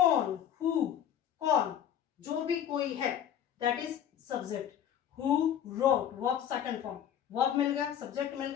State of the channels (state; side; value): quieter; right; 9.9 dB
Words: हु, कौन, जो भी कोई है, that is subject. Who wrote, verb second form, verb मिल गया, सब्जेक्ट मिल